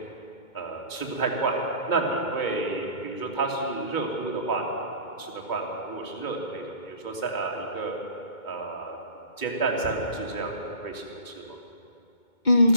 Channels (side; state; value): right; late; 2.2 ms